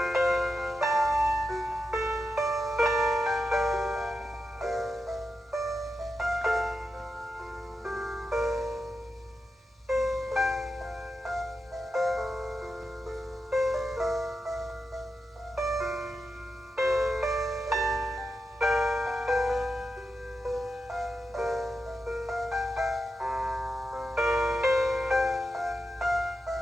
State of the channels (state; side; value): normal; both; correlation 0.88